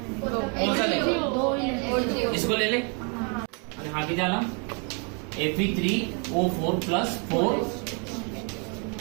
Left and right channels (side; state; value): left; quieter; 36.6 dB